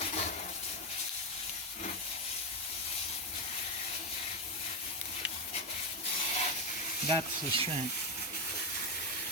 That's the shank.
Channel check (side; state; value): both; normal; correlation 0.08